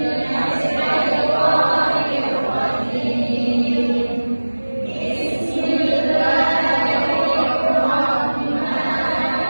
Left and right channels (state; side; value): inverted; both; correlation -1.00